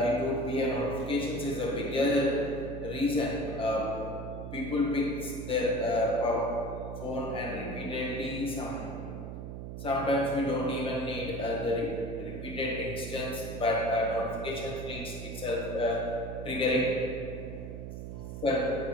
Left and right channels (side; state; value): right; noise; hum, 8 dB below the sound